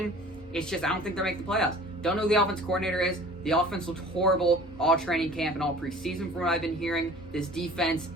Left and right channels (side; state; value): both; normal; correlation 0.46